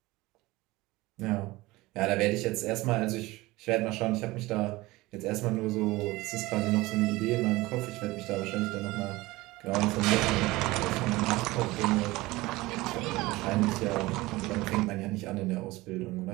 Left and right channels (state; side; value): quieter; left; 20.2 dB